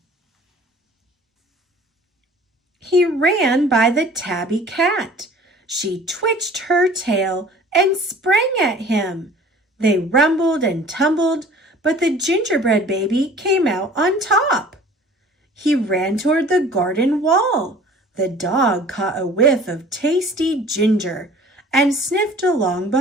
He ran by the tabby cat. She twitched her tail and sprang at him. They rumbled and tumbled, but the gingerbread baby came out on top. He ran toward the garden wall. The dog caught a whiff of tasty ginger and sniffed along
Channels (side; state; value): both; normal; correlation 0.48